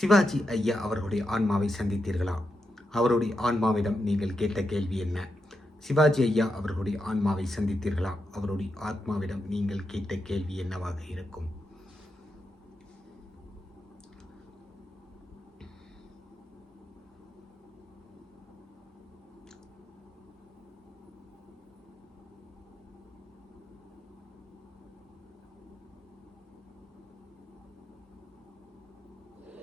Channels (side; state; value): both; normal; correlation 0.86